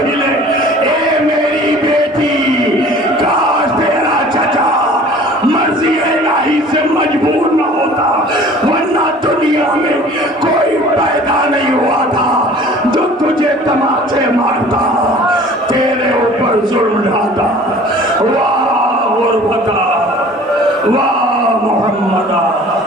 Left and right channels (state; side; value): normal; both; correlation 0.47